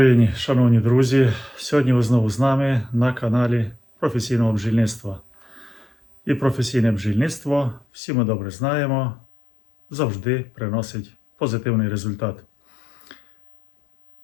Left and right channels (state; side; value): drops out; right; at 7.9 s